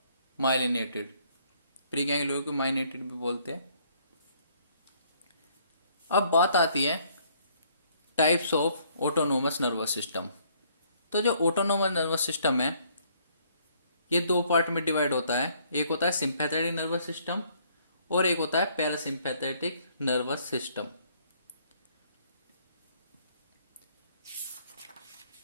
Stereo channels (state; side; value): inverted; both; correlation -0.65